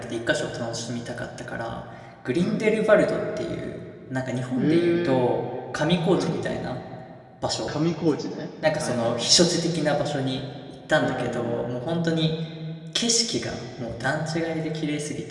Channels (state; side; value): identical; both; correlation 1.00